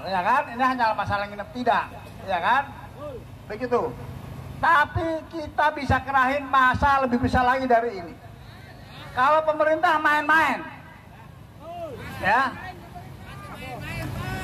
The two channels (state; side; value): identical; both; correlation 1.00